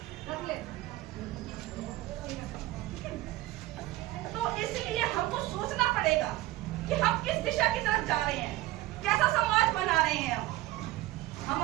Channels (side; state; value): left; quieter; 17.1 dB